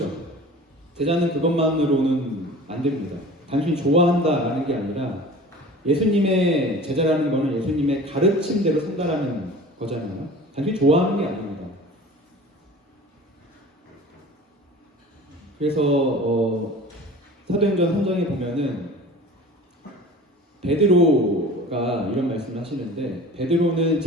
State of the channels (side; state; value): both; normal; correlation 0.41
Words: 제자는 그것만으로는 안 됩니다. 단순히 좋아한다라는 게 아니라 예수님의 제자라는 거는 예수님의 가르침대로 산다라는 거잖아요. 단순히 좋아하는 게 아닙니다. 그래서 사도행전 3장에 보면은 베드로가 이런 말씀을 하시는데 베드로는